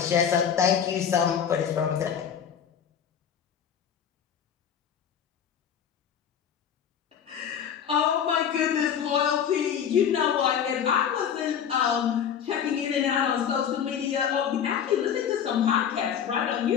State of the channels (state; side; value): quieter; right; 8.3 dB